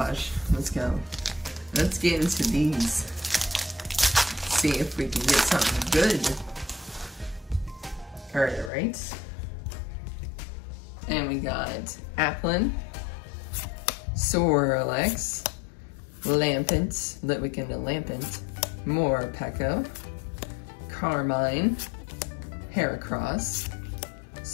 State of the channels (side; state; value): right; drops out; at 8.7 s